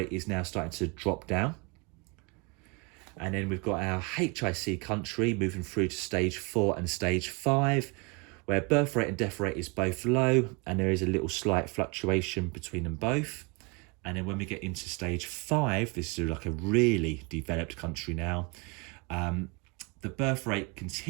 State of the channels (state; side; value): quieter; left; 30.3 dB